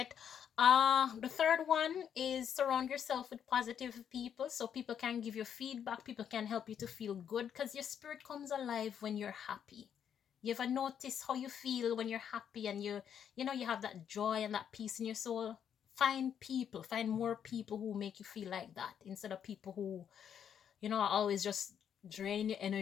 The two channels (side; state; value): right; quieter; 8.5 dB